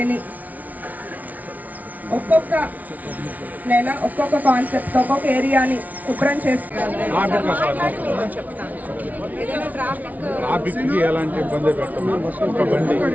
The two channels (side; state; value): left; late; 0.074 ms